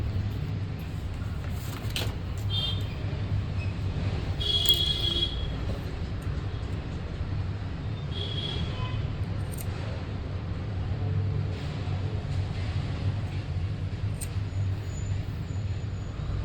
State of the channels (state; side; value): identical; both; correlation 1.00